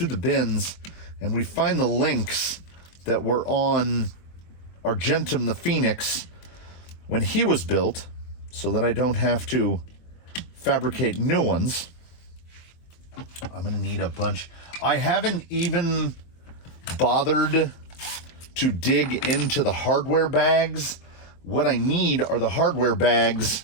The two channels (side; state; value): right; late; 24 ms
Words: the bins and we find the links that were on Argentum the Phoenix when he was built, so that I don't have to fabricate new ones. I'm gonna need a bunch. I haven't even bothered to dig into the hardware bags. What I need are the hardware bags